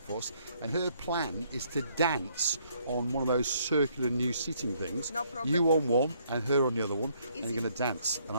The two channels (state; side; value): inverted; both; correlation -0.68